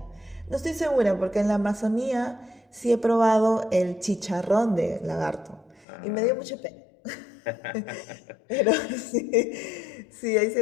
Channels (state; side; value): drops out; right; at 5.9 s